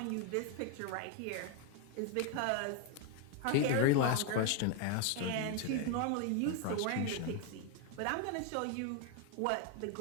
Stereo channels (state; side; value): different; both; correlation 0.01